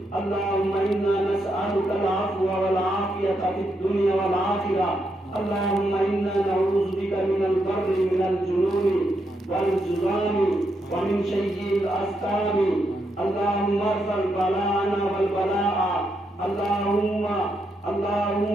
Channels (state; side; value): normal; both; correlation 0.81